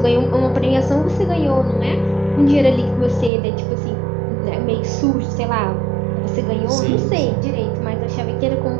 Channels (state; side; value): drops out; left; at 3.3 s